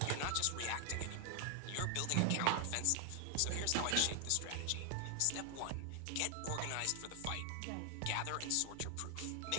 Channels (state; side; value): different; both; correlation 0.00